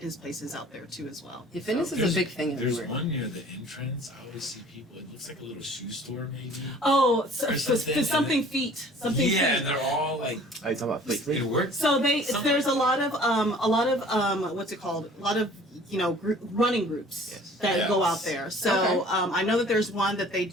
places out there too as well. Yeah, fitness is a big thing There's everywhere. one near the entrance. I always see people. It looks like a little shoe store, maybe. Oh, Or something, something feet. Something Yeah, feet. they're all like. Are you talking about Fleet Fleet? It works. So Something there's a like lot of what's it called? A lot of running groups Yes. that go out Yes. there. So I know that there's one that they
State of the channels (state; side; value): normal; both; correlation 0.50